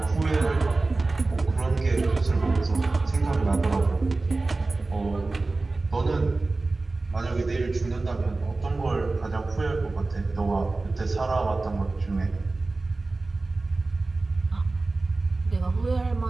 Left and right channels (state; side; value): quieter; left; 3.4 dB